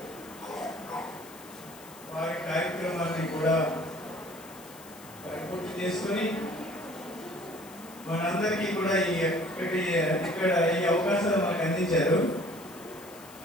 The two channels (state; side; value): noise; left; hiss, 19 dB below the sound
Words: వారి కార్యక్రమాన్ని కూడా పరిపూర్తి చేసుకొని మనందరికీ కూడా ఇక్కడ ఈ అవకాశాలు మనకు అందించారు.